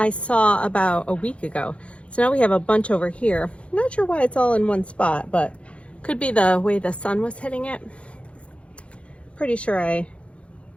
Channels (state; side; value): late; right; 0.061 ms